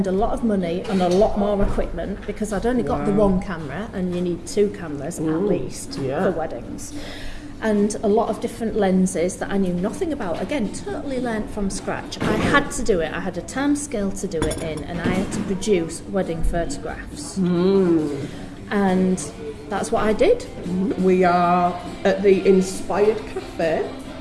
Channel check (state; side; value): identical; both; correlation 1.00